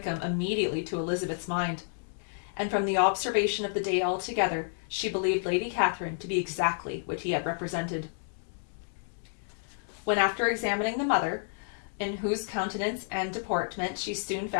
immediately to Elizabeth's mind. and from the observation of the day altogether, she believed Lady Catherine to be exactly what he had represented. When after examining the mother, in whose countenance and deportment she soon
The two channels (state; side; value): silent; right; 58 dB below the other